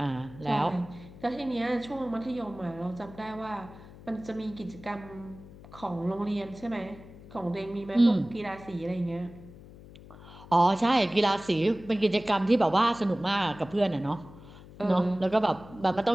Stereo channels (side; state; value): left; noise; hum, 19 dB below the sound